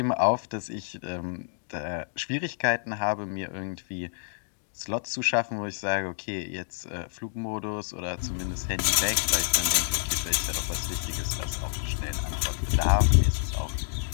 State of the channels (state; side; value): silent; right; digital silence